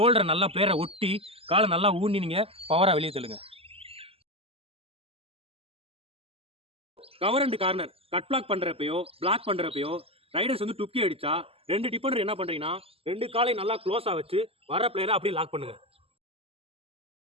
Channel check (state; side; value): late; left; 0.28 ms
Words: நல்லா பிளேயரை ஒட்டி காலை நல்லா ஊனி நீங்கள் பவராக வெளியே தள்ளுங்க. Cover and corner cut block பண்ணுறப்பையோ பிளாக் பண்ணுறப்பையோ ரைடர்ஸ் வந்து டுக்கி அடித்தா ரெண்டு டிஃபெண்டர் என்ன பண்ணுறீங்கன்னா, ரெண்டு காலை நல்லா க்ளோஸாக வச்சு வர பிளேயரை அப்படியே லாக் பண்ணுங்கள்.